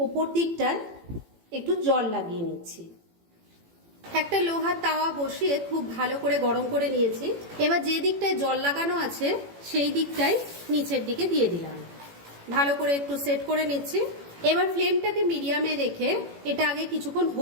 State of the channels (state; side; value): late; left; 18 ms